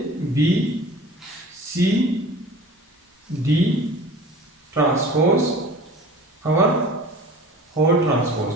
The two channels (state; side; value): normal; both; correlation 0.41